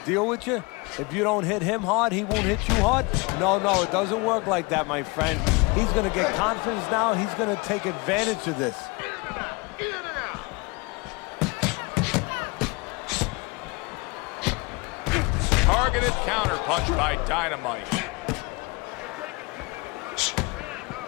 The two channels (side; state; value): right; quieter; 27.4 dB